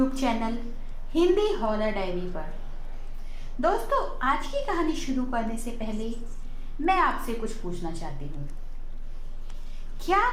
channel Hindi horror diary पर। दोस्तों, आज की कहानी शुरू करने से पहले मैं आपसे कुछ पूछना चाहती हूँ। क्या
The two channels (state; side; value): identical; both; correlation 1.00